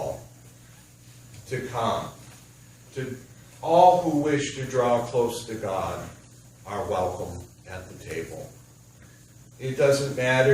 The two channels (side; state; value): both; identical; correlation 1.00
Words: to come. To all who wish to draw close to God are welcome at the table. It doesn't